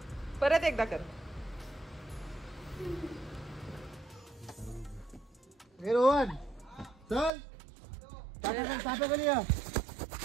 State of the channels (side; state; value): left; drops out; at 7.3 s